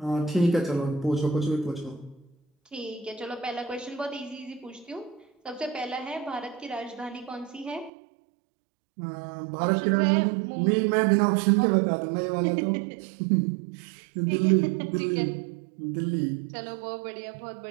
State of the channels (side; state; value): left; drops out; at 7.9 s